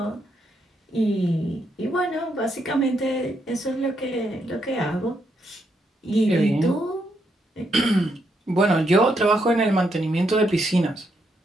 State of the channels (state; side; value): normal; both; correlation 0.78